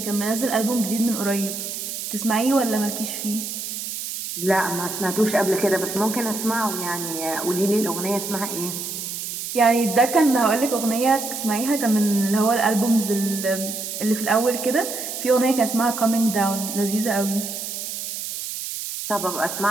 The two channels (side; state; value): right; noise; hiss, 6 dB below the sound